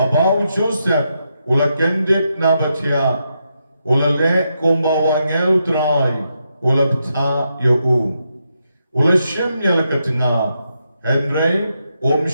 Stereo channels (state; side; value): inverted; both; correlation -0.83